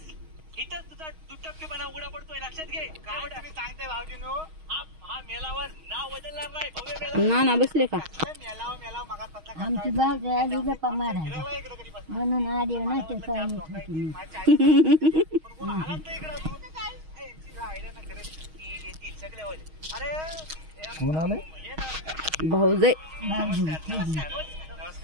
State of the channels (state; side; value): late; left; 6.3 ms